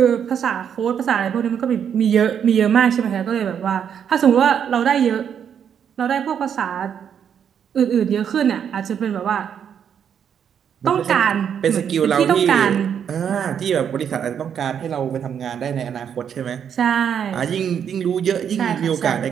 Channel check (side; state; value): left; quieter; 8.2 dB